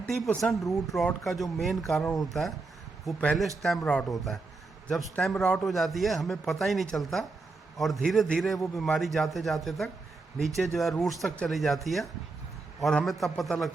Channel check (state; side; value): quieter; left; 3.8 dB